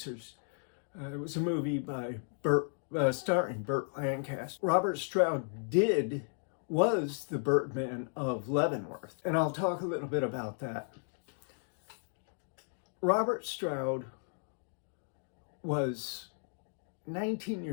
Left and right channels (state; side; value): silent; right; digital silence